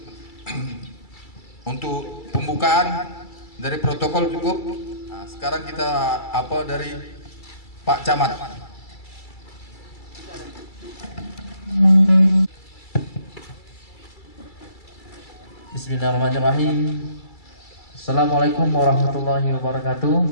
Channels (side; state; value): right; late; 2.3 ms